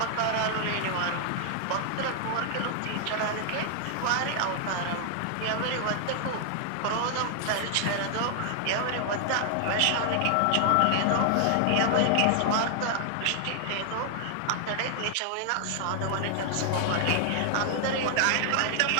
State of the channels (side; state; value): both; different; correlation 0.00